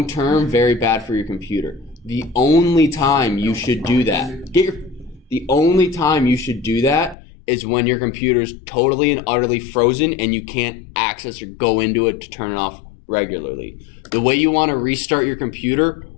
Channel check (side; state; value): right; drops out; at 7.2 s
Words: very bad for your computer. The only time you should do that, the only time you should do that is when your computer's totally and utterly frozen and you can't access or go into it to turn it off regularly. The way you want to restart your computer,